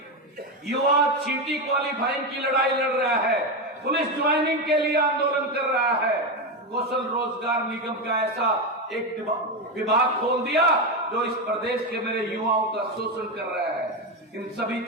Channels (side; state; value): both; normal; correlation 0.12